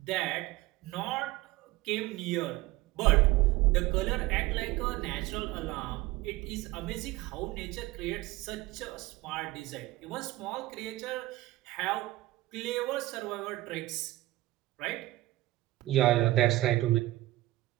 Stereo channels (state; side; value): quieter; left; 17.9 dB